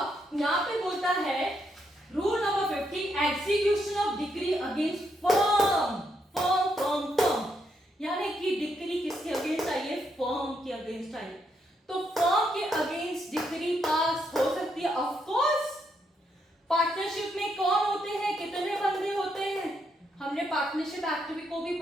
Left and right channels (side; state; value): both; normal; correlation 0.78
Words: यहां पे बोलता है rule number 50 execution of decree against firm, firm firm firm, यानी कि डिक्री किसके अगेंस्ट आई है, फर्म के अगेंस्ट आई। तो फर्म के अगेंस्ट डिक्री पास हो सकती है, ऑफ कोर्स। पार्टनरशिप में कौन होते हैं, कितने बंदे होते हैं, हमने पार्टनरशिप एक्ट को भी